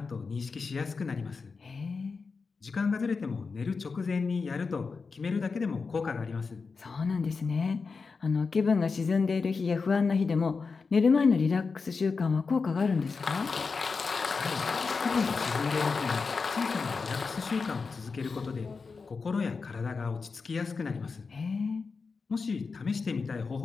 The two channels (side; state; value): right; quieter; 4.7 dB